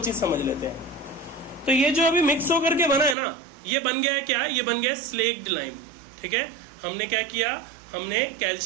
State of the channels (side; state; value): left; drops out; at 3.2 s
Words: समझ लेते हैं। तो ये जो अभी मिक्स होकर के बना है ना, ये बन गया है क्या, ये बन गया है स्लेक्ड लाइम। ठीक है, हमने क्या किया, हमने